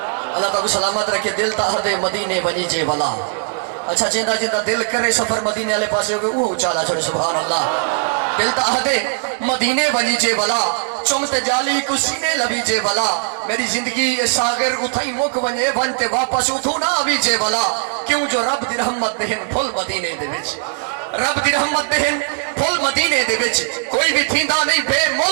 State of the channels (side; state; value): left; silent; digital silence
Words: تعالیٰ سلامت رکھے دل تا دے مدینے بنی جے والا اچھا جیندہ دل کرے سفر مدینے والے پاسے ہوگے وہ چالا چھوڑے سبحان اللہ دل تا دے مدینے بنی جے والا چمت جالی کو سینے لبی جے والا میری زندگی ساگر اتھائی مک ونجے بنتے واپس اتھو نہ آبی جے والا کیوں جو رب دی رحمت دہن پھل مدینے دے وچ رب دی رحمت دہن پھل مدینے دے وچ کوئی بھی تھیندا نہیں بے